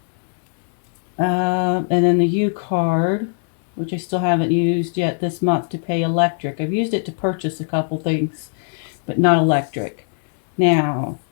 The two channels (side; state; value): right; silent; digital silence